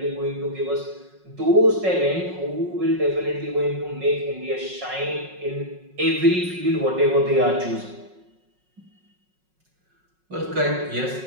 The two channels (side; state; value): left; late; 5.4 ms